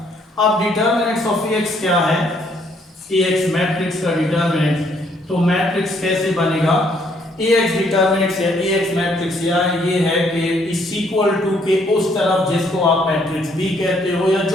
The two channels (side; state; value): both; normal; correlation 0.68